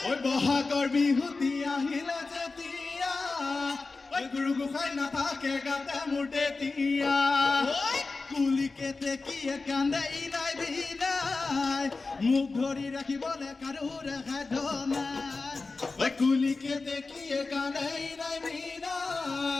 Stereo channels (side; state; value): right; quieter; 3.8 dB